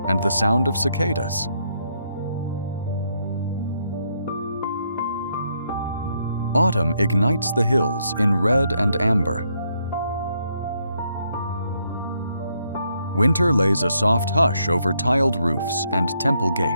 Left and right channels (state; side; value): inverted; both; correlation -0.75